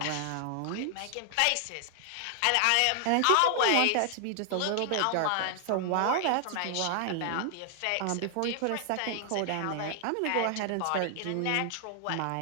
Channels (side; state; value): both; different; correlation 0.00